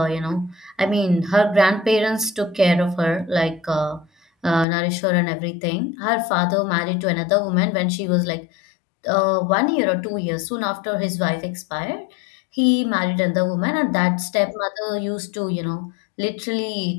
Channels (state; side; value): drops out; right; at 4.7 s